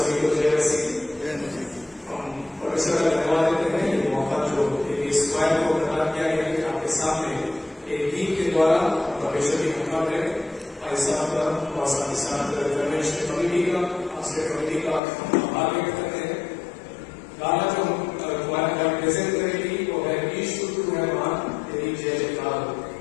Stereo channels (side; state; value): right; drops out; at 15.0 s